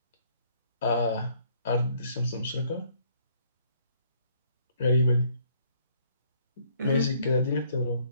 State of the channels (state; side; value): inverted; both; correlation -0.65